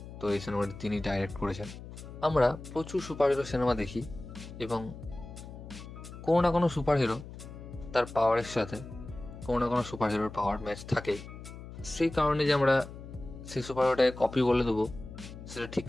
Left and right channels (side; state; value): left; noise; hum, 13 dB below the sound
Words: তো এই সিনেমাটি তিনি ডাইরেক্ট করেছেন। আমরা প্রচুর সুপারহিরো সিনেমা দেখি এবং কোনো না কোনো সুপারহিরো তার পাওয়ারের সাথে কোনো না কোনো সুপারহিরোর পাওয়ার ম্যাচ থাকেই। সেই কারণে যে আমরা সেই সুপারহিরোটাকে কপি বলে দেবো সেটা ঠিক